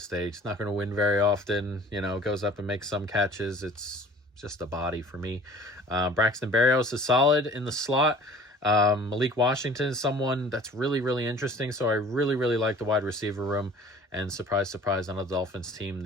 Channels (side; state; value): both; normal; correlation 0.48